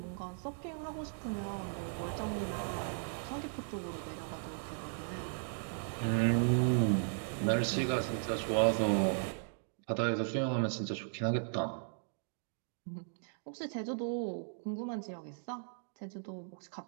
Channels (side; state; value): left; silent; digital silence